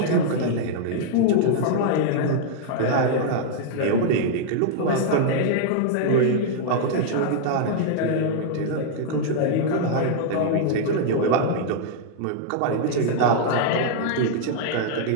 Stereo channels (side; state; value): both; different; correlation -0.01